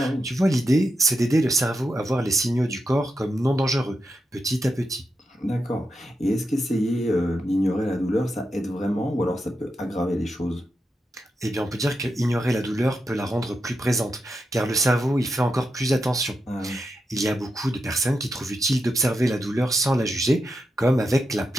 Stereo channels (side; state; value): both; normal; correlation 0.86